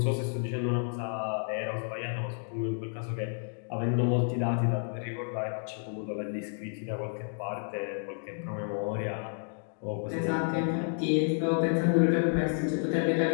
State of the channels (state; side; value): silent; right; 57 dB below the other